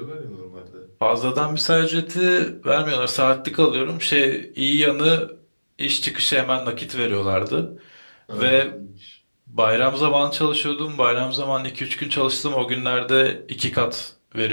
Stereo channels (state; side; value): inverted; both; correlation -1.00